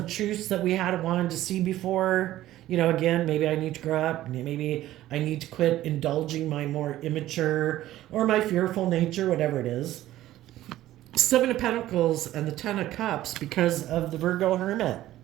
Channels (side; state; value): left; quieter; 14.4 dB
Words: truths that we had wanted to see before. You know, again, maybe I need to grow up. Maybe I need to quit indulging my more immature or my fearful nature, whatever it is. Seven of Pentacles and the Ten of Cups because of the Virgo Hermit.